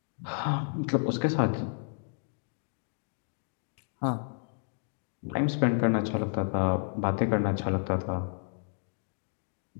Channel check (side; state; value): right; silent; digital silence